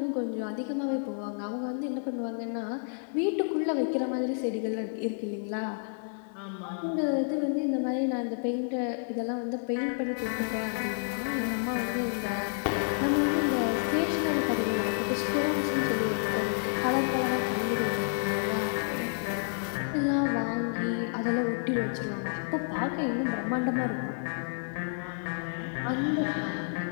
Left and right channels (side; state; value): right; silent; digital silence